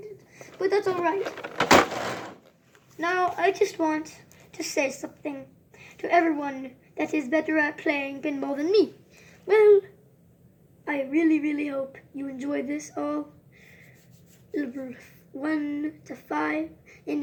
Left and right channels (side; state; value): both; identical; correlation 1.00